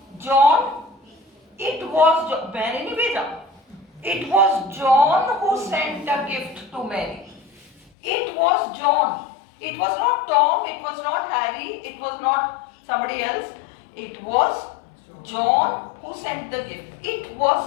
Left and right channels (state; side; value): drops out; right; at 7.9 s